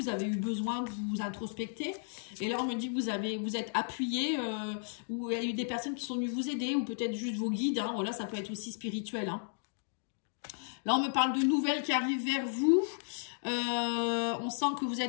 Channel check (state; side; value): silent; right; digital silence